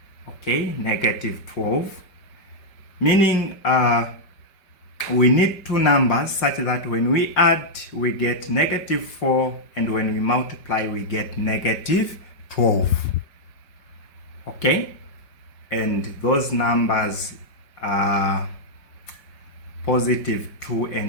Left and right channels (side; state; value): right; late; 5.1 ms